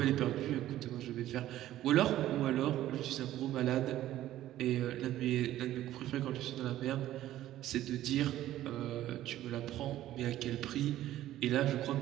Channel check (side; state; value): left; quieter; 13.7 dB